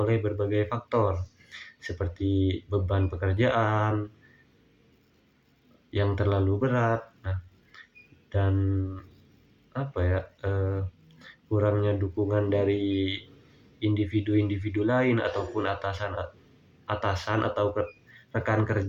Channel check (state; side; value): identical; both; correlation 1.00